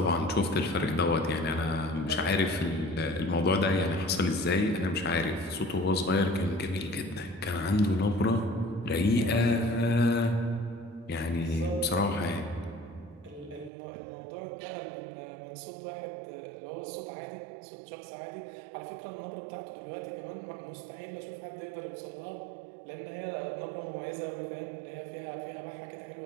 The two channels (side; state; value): left; drops out; at 13.7 s